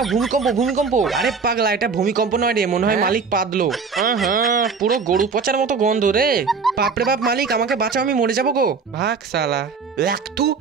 ভূমিকম্প ভূমিকম্প। আরে পাগলা, এটা ভূমিকম্প নয় রে, মনে হয় মালিক পাদলো। হ্যাঁ পুরো গরু পচার মতো গন্ধ রে। বাপরে বাপ মালিক, আমাকে বাঁচাও, আমি মরে যাবো গো। ভাগ শালা। একটু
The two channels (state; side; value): quieter; left; 5.2 dB